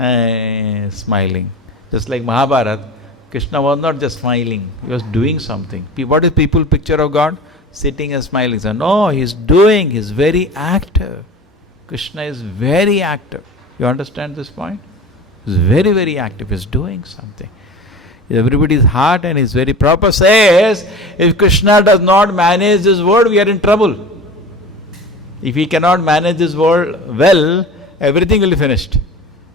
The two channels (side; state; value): both; normal; correlation 0.35